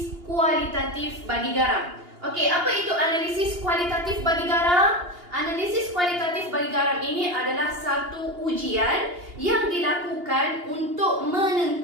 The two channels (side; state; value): left; late; 2.8 ms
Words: kualitatif bagi garam. Okey, apa itu analisis kualitatif bagi garam? Analisis kualitatif bagi garam ini adalah satu ujian yang dilakukan untuk